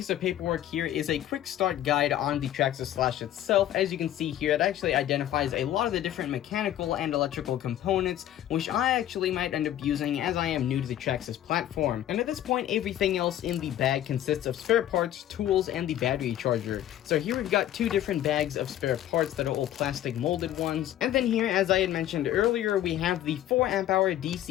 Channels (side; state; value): right; quieter; 12.2 dB